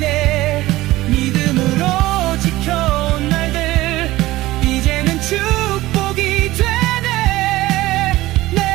믿음으로 지켜온 날들 이제는 축복이 되네.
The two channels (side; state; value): left; quieter; 17.5 dB